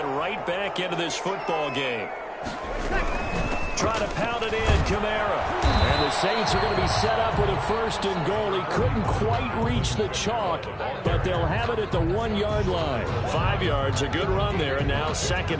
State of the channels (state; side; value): identical; both; correlation 1.00